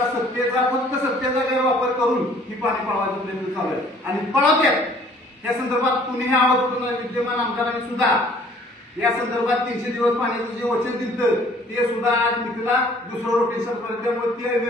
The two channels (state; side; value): normal; both; correlation 0.56